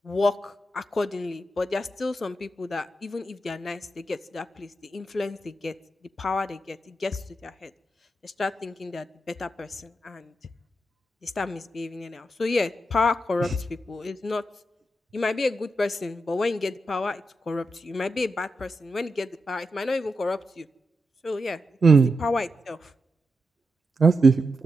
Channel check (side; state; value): both; normal; correlation 0.86